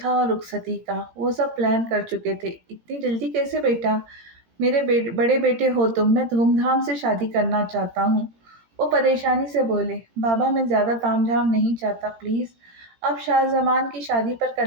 اور رخصتی کا۔ وہ سب پلان کر چکے تھے۔ اتنی جلدی کیسے بیٹا؟ میرے بڑے بیٹے ہو تم، میں دھوم دھام سے شادی کرنا چاہتا ہوں۔ وہ پریشانی سے بولے، بابا میں زیادہ تام جھام نہیں چاہتا، پلیز اب شاہ زمان کی شادی پر کر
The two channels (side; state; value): left; late; 18 ms